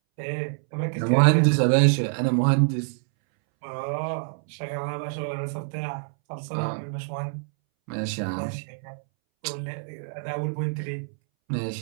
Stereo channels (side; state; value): left; silent; 61 dB below the other